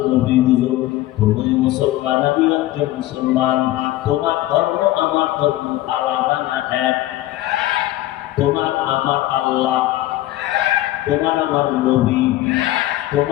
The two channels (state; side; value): quieter; right; 15.6 dB